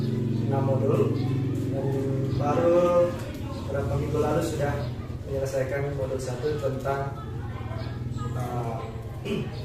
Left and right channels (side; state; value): both; identical; correlation 1.00